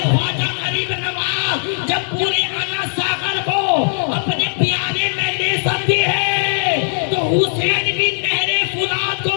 خواجہ غریب نواز جب پورے انا ساگر کو اپنے پیالے میں لے سکتی ہے تو حسین بھی نہر فرات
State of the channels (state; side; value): silent; right; 67 dB below the other